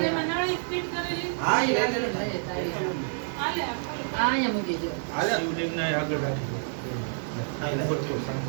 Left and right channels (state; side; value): silent; left; 59 dB below the other